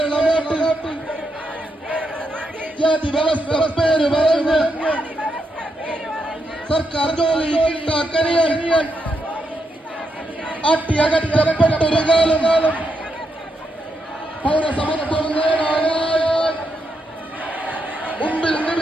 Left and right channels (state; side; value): normal; both; correlation 0.82